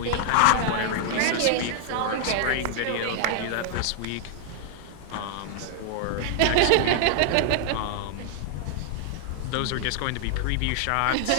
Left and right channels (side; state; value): both; different; correlation 0.00